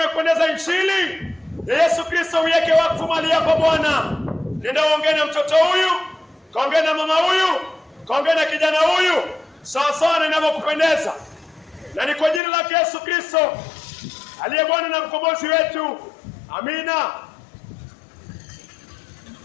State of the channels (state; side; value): drops out; right; at 12.4 s